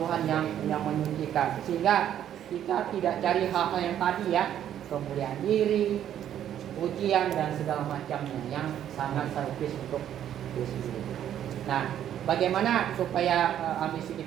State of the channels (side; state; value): left; quieter; 10.5 dB